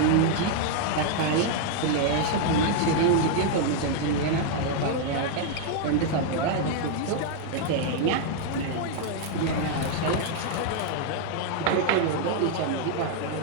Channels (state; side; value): different; both; correlation 0.00